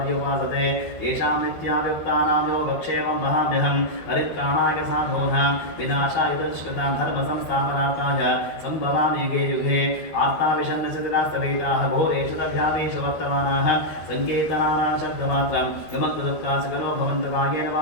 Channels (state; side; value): late; right; 12 ms